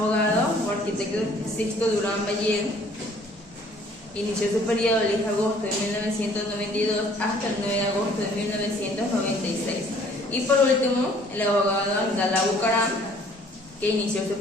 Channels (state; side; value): normal; both; correlation 0.57